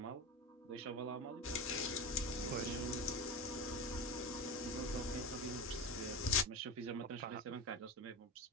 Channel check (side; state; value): both; normal; correlation 0.23